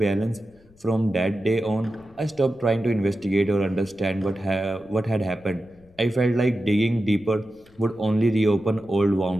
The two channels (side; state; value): left; noise; rumble, 28 dB below the sound